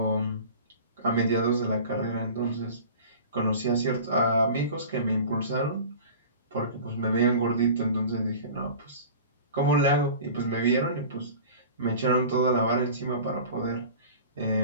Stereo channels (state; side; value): inverted; both; correlation -0.39